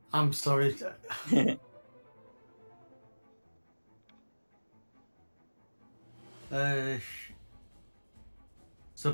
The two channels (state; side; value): inverted; both; correlation -1.00